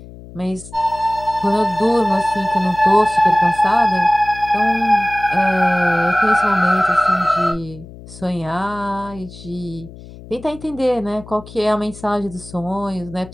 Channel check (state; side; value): noise; left; hum, 17 dB below the sound